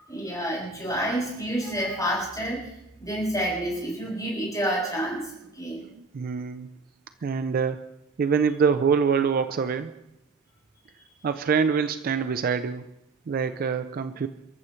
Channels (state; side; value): quieter; left; 4.0 dB